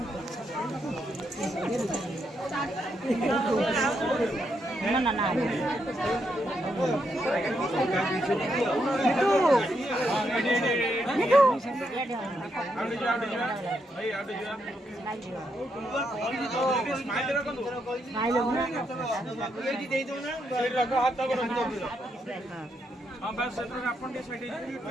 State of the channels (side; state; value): both; normal; correlation 0.79